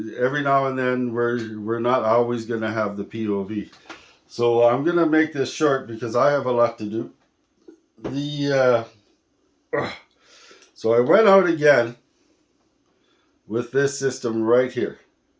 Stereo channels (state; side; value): identical; both; correlation 1.00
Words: every now and then we're not always going to have the POV. So I'm going to make this short because I have a lot to do. The So I went out again with this system right here,